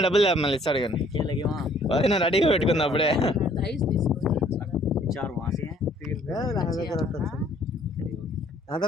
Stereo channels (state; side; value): normal; both; correlation 0.60